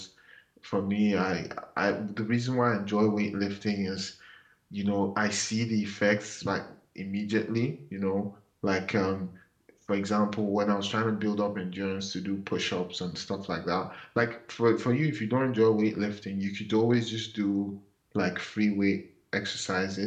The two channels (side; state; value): both; identical; correlation 1.00